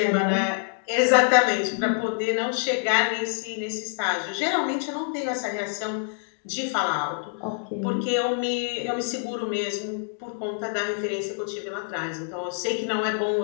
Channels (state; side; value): silent; right; digital silence